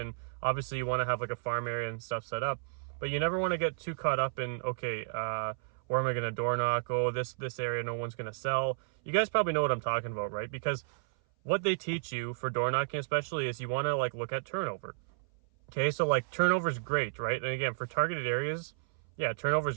obviously you want to have a farm area and stuff set up, but you never want to get too caught up in, okay, where am I going to door knock? Oh, this area no one's going to sell. You guys probably know what I'm talking about, right? Because what they teach you for door knocking especially is you want to look at turnover. Okay, so turnover is great, right? And again, for targeted areas, yeah, turnover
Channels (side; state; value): left; silent; 56 dB below the other